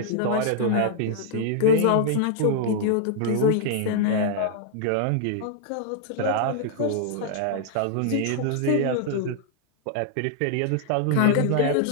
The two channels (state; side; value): different; both; correlation -0.01